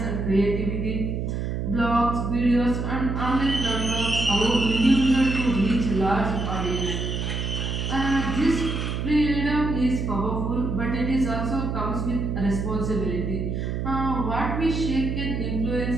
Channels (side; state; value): right; noise; hum, 2 dB below the sound